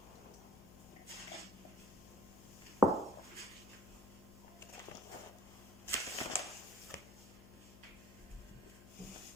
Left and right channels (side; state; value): left; noise; hum, 17 dB below the sound